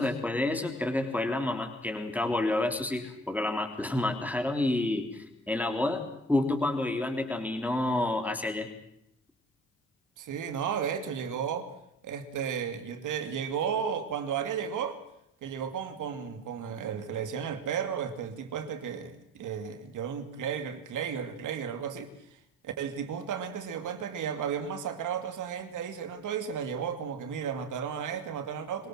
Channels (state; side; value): normal; both; correlation 0.43